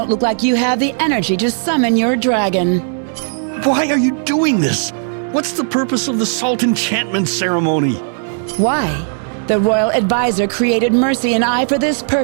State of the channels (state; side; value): silent; left; 69 dB below the other